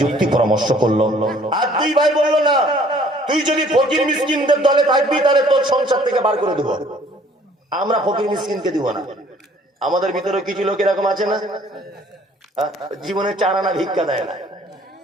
যুক্তি পরামর্শ করলো। আর 2 ভাই বললো, না তুই যদি ফকির মিসকিনদের দলে থাকবি তাহলে তোর সংসার থেকে বার করে দেবো, আমরা ফকির মিসকিনকে দিব না। আমাদের ভিতরে কিছু লোক এরকম আছে না, জীবনে 4 আনা ভিক্ষা দেয় না,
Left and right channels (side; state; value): both; normal; correlation 0.57